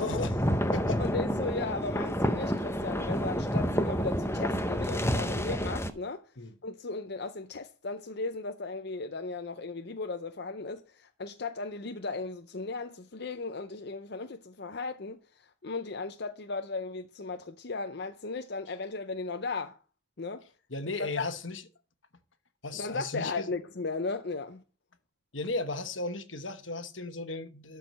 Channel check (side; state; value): both; normal; correlation 0.32